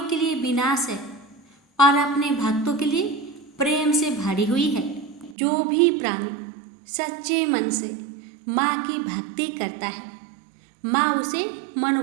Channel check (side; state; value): left; drops out; at 5.4 s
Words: के लिए विनाश है और अपने भक्तों के लिए प्रेम से भरी हुई है। जो भी प्राणी सच्चे मन से माँ की भक्ति करता है, माँ उसे